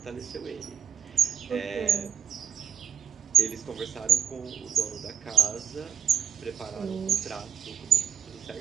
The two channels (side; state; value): left; quieter; 8.0 dB